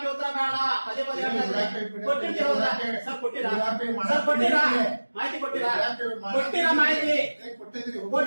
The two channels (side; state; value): both; inverted; correlation -1.00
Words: ಉತ್ತರ ಬೇಡ. ಪದೇ ಪದೇ ಕೊಟ್ಟಿರ್ತೀವಿ. ಸರ್ ಕೊಟ್ಟಿರಾ? ಸರ್ ಕೊಟ್ಟಿರಾ? ಮಾಹಿತಿ ಕೊಟ್ಟಿರಾ? ಕೊಟ್ಟಿರಾ ಮಾಹಿತಿ?